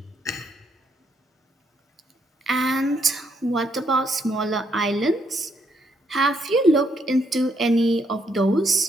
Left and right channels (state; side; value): normal; both; correlation 0.74